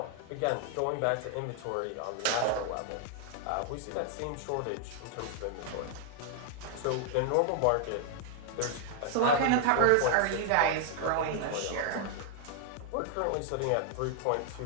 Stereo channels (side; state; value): both; different; correlation 0.00